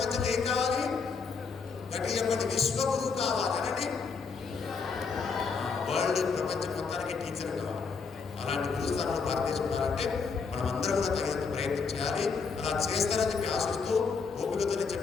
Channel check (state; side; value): quieter; right; 5.2 dB